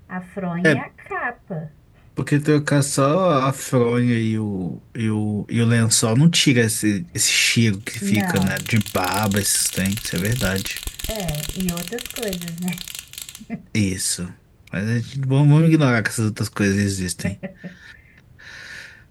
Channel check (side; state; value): both; identical; correlation 1.00